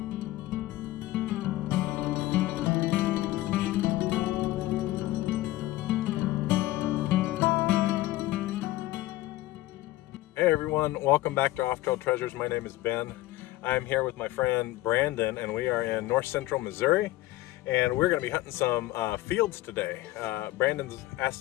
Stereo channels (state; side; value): quieter; right; 17.1 dB